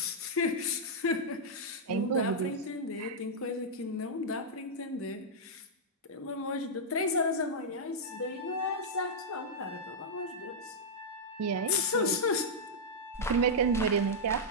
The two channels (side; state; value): both; normal; correlation -0.07